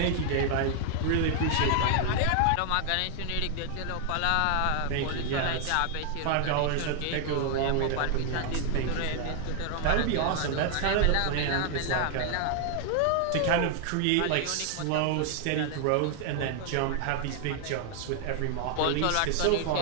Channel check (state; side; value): different; both; correlation 0.00